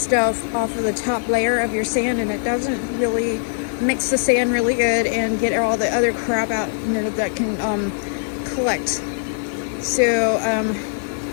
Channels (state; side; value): silent; right; 58 dB below the other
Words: off of the top layer of your sand, and it doesn't really mix the sand really good and get all the other crap out, that can collect. So